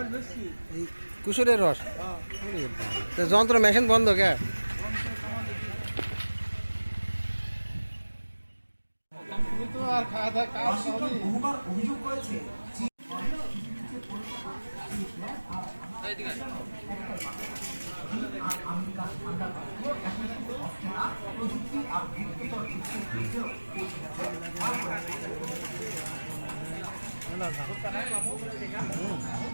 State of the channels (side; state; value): both; inverted; correlation -1.00